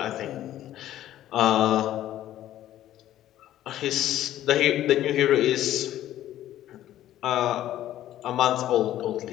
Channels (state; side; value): quieter; right; 12.9 dB